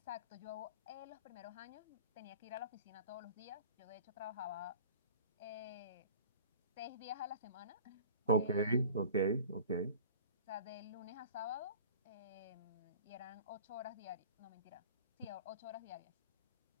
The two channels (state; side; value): inverted; both; correlation -0.43